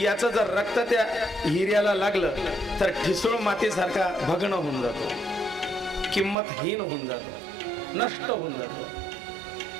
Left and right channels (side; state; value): left; drops out; at 6.4 s